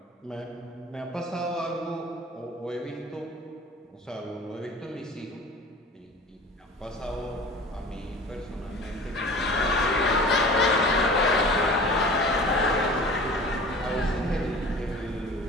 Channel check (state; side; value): normal; both; correlation 0.41